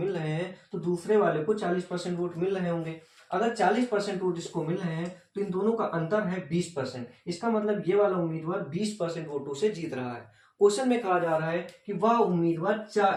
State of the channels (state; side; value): identical; both; correlation 1.00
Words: रहे हैं तो दूसरे वाले को 40% वोट मिल रहे होंगे। अगर 40% वोट इसको मिल रहे हैं तो इन दोनों का अंतर है 20%। इसका मतलब ये वाला उम्मीदवार 20% वोटों से जीत रहा है। क्वेश्चन में कहा जा रहा है कि वह उम्मीदवार